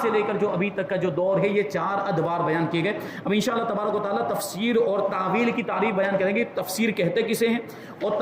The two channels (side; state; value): both; identical; correlation 1.00